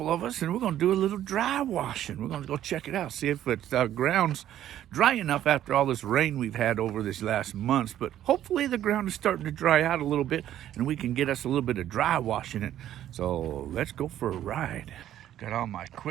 of us, and we're going to do a little dry washing. We're going to go check it out, see if the ground's dry enough after all this rain we've had over this last month. But hopefully the ground is starting to dry out a little bit, and we can get us a little bit of dry washing it. So let's go for a ride. Got all my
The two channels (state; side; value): quieter; left; 11.8 dB